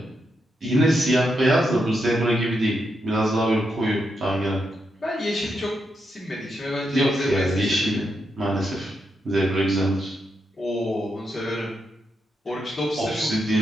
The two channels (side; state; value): both; normal; correlation 0.83